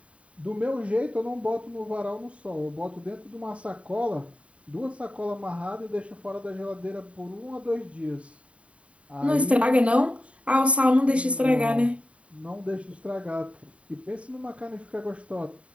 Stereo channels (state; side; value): late; left; 0.064 ms